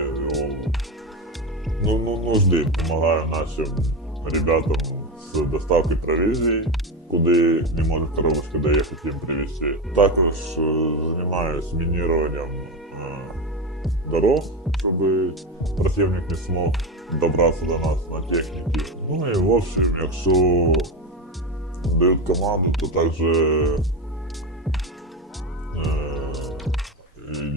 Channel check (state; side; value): normal; both; correlation 0.17